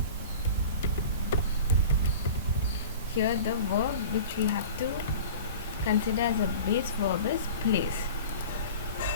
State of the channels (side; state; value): both; inverted; correlation -0.38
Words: Here the verb which we have to consider as a base verb is plays.